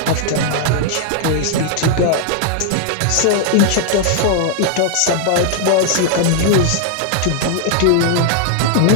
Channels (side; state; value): both; different; correlation 0.00